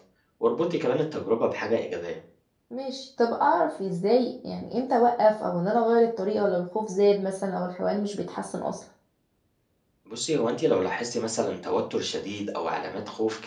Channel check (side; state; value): both; identical; correlation 1.00